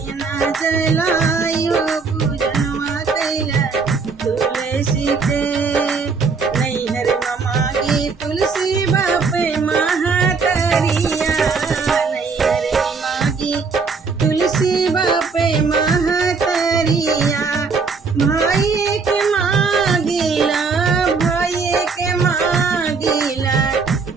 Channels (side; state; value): left; quieter; 4.8 dB